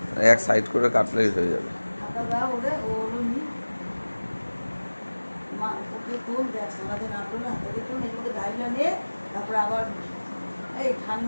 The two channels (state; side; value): inverted; both; correlation -1.00